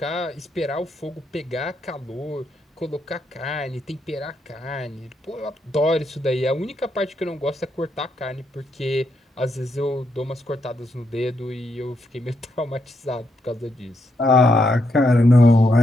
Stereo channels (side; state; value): both; normal; correlation 0.79